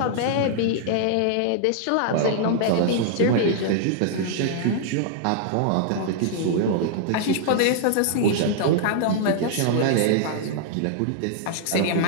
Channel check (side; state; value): both; different; correlation -0.01